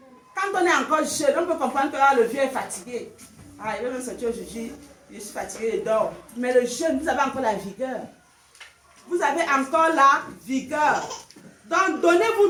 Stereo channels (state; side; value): identical; both; correlation 1.00